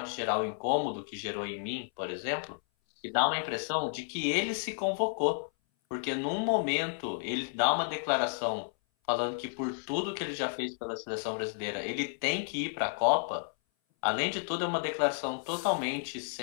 gerar o incômodo que gerou em mim, por exemplo, que dá uma impressão de que ele se convocou. Porque num momento ele dá uma declaração falando que por tudo que ele já fez pela seleção brasileira, ele tem que ir para a Copa. Além de tudo, é uma declaração totalmente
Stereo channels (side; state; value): right; silent; 57 dB below the other